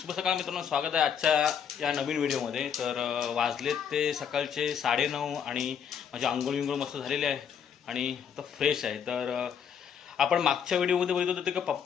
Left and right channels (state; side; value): quieter; right; 7.8 dB